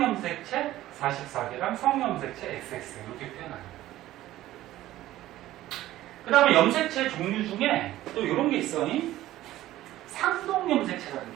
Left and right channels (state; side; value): quieter; left; 14.9 dB